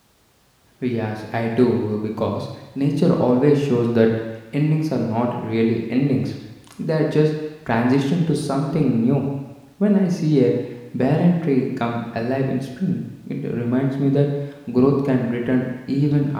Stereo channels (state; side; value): identical; both; correlation 1.00